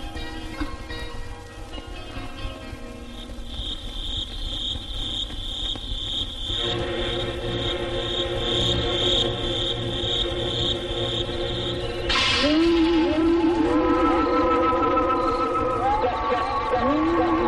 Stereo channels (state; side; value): identical; both; correlation 1.00